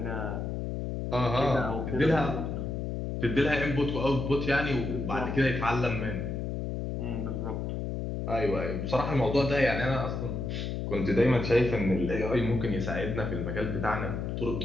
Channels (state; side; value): noise; left; hum, 3 dB below the sound